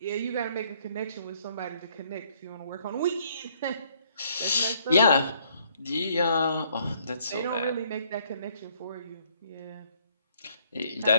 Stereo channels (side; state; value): both; inverted; correlation -0.66